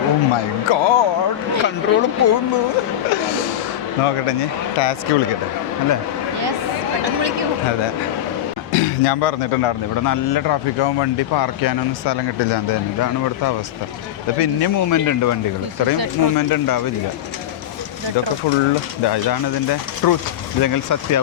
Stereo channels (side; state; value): right; quieter; 11.7 dB